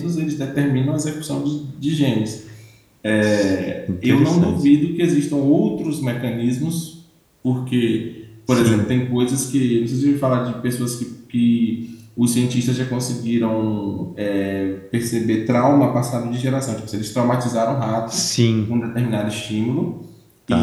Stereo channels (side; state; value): both; identical; correlation 1.00